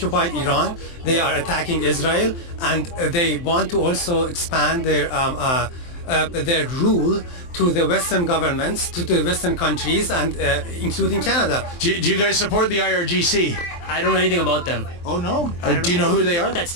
Iran. They are attacking Israel, and they want to also expand their rule to the Western governments, to the Western countries, and including Canada. Do you guys support the IRGC? I don't know anything about them. Oh no? Do you know who they are? What that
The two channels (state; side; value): late; right; 23 ms